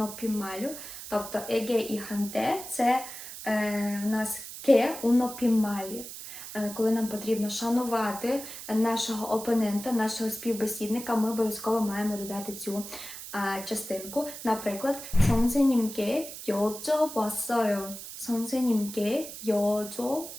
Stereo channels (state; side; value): noise; right; hiss, 11 dB below the sound